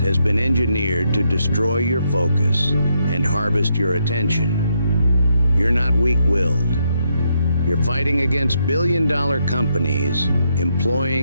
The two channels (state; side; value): inverted; both; correlation -0.78